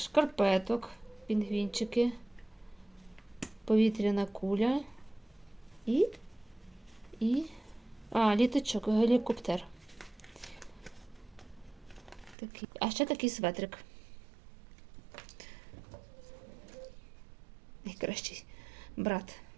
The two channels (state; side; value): drops out; left; at 12.4 s